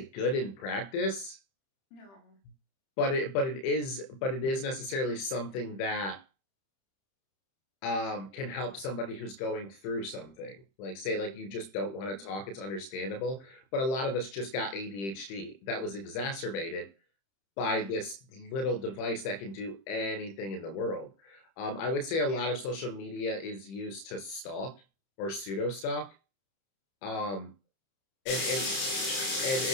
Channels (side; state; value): right; late; 31 ms